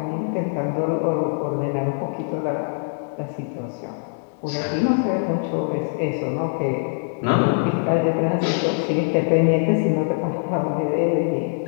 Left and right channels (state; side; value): silent; right; digital silence